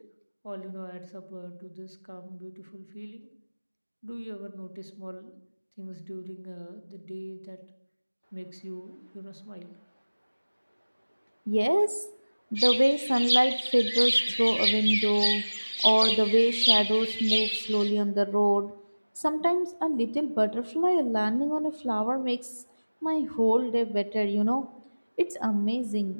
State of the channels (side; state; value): both; inverted; correlation -1.00